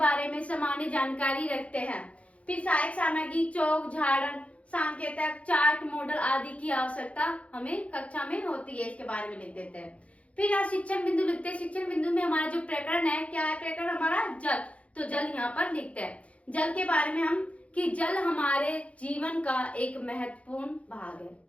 में सामान्य जानकारी रखते हैं। फिर सहायक सामग्री, चौक, झाड़न, सांकेतक, चार्ट, मॉडल आदि की आवश्यकता हमें कक्षा में होती है, इसके बारे में लिख देते हैं। फिर यहाँ शिक्षण बिंदु लिखते हैं। शिक्षण बिंदु में हमारा जो प्रकरण है, क्या है प्रकरण हमारा? जल। तो जल यहाँ पर लिखते हैं। जल के बारे में हम कि जल हमारे जीवन का एक महत्वपूर्ण भाग है,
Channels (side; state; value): right; late; 0.064 ms